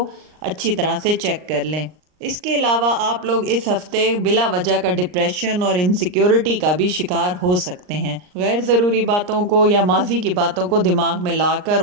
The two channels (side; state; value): left; late; 39 ms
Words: اچھی طرح سے چیک کر لیں۔ اس کے علاوہ آپ لوگ اس ہفتے بلا وجہ کا ڈپریشن اور انسیکیورٹی کا بھی شکار ہو سکتے ہیں۔ غیر ضروری باتوں کو یا ماضی کی باتوں کو دماغ میں لا کر